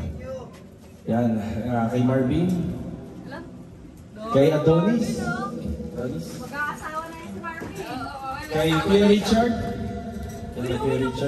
Yan. Kay Marvin. Kay Adonis. Mag-aasawa na yun si Marvin. Kay Kuya Richard. Kay Kuya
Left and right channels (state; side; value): identical; both; correlation 1.00